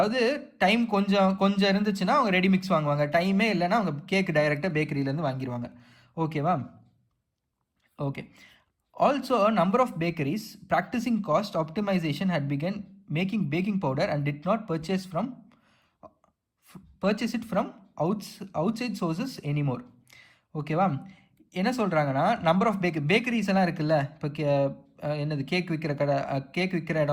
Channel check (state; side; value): identical; both; correlation 1.00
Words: டைம் கொஞ்சம் இருந்துச்சுன்னா அவங்க ரெடி மிக்ஸ் வாங்குவாங்க, டைமே இல்லைன்னா அவங்க கேக் டைரெக்டாக பேக்கரியிலேருந்து வாங்கிடுவாங்க. ஓகேவா? Okay. Also number of bakeries practising cost optimisation had begun making baking powder and did not purchase it from outside sources anymore. ஓகேவா? என்ன சொல்கிறாங்கன்னா, நம்பர் ஆஃப் பேக்கரிஸ் எல்லாம் இருக்குல்ல, இப்போ என்னது கேக் விற்கிற